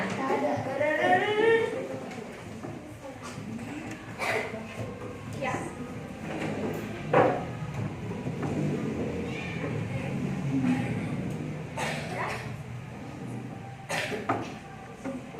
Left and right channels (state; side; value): identical; both; correlation 1.00